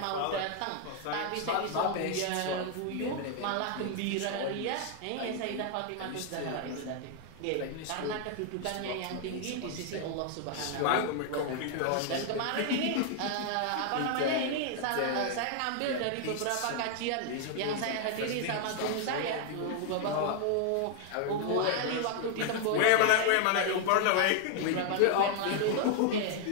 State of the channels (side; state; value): both; different; correlation 0.00